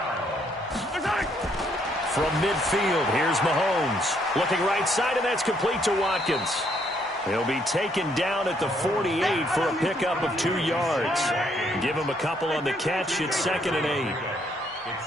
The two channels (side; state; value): both; normal; correlation 0.70